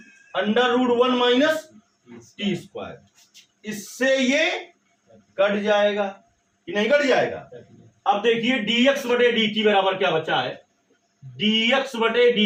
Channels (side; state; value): both; identical; correlation 1.00